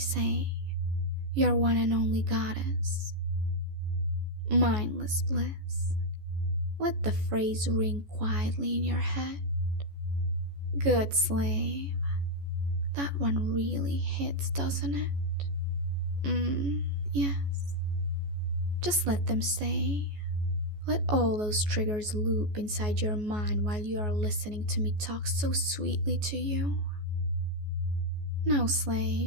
your one and only goddess. Mindless bliss, let the phrase ring quietly in your head. Good slave. That one really hits, doesn't it? Yes. Just let them stay. Let all those triggers loop inside your mind while you are listening to me talk so sweetly to you. Now,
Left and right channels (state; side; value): late; left; 14 ms